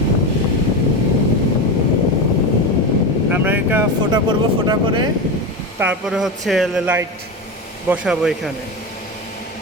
আমরা এটা ফোটা করব, ফোটা করে তারপরে হচ্ছে লাইট বসাবো এখানে।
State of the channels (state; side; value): normal; both; correlation 0.19